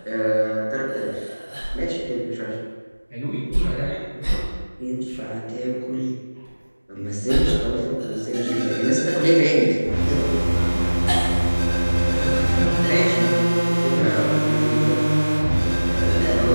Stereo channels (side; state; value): both; inverted; correlation -1.00